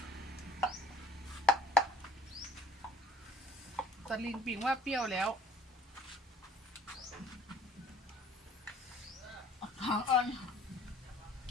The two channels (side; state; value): both; normal; correlation 0.53